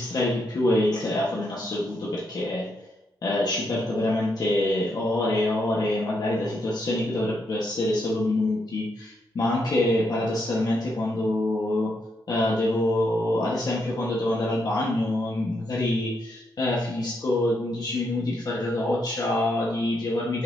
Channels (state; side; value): normal; both; correlation 0.79